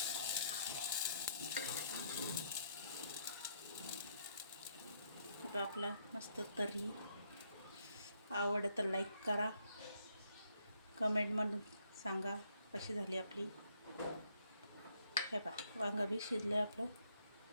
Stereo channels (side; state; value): both; inverted; correlation -0.71